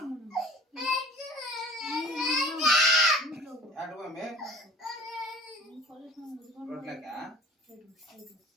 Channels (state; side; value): normal; both; correlation 0.45